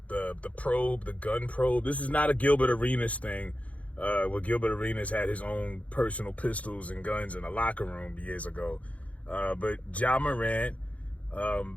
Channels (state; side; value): late; right; 0.066 ms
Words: probe, the gun probe. This is not a Gilbert Arenas thing. Where Gilbert Arenas had his own personal pistols and guns in a locker room years ago. But Ja Morant,